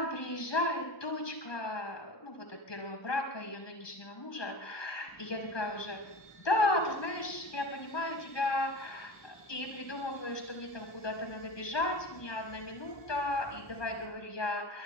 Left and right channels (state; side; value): late; right; 1.2 ms